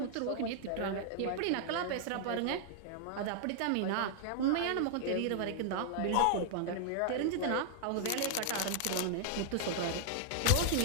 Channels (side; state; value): both; different; correlation -0.01